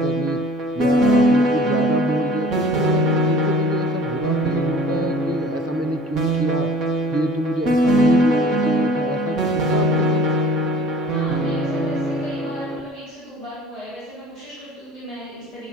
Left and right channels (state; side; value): normal; both; correlation 0.48